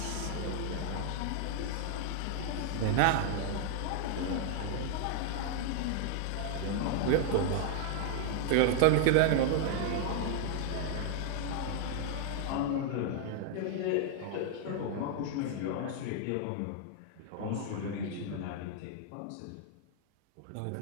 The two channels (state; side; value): different; both; correlation 0.00